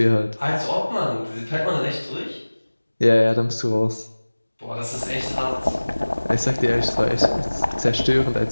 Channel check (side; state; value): both; inverted; correlation -1.00